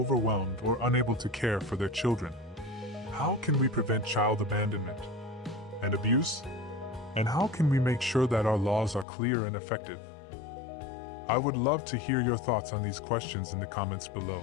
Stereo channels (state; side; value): drops out; right; at 9.1 s